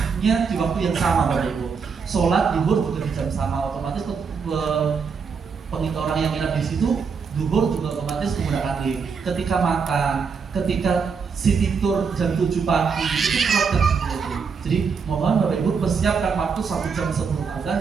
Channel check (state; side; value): quieter; left; 5.7 dB